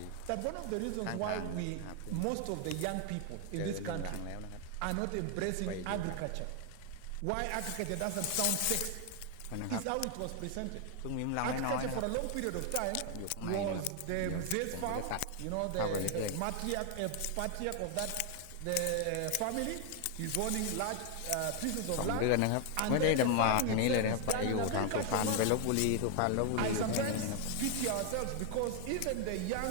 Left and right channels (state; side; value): different; both; correlation 0.00